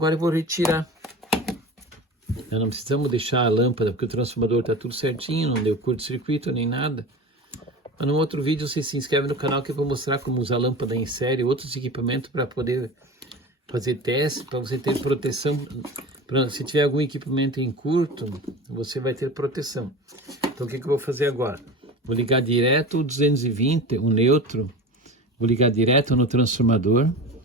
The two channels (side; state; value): both; normal; correlation 0.32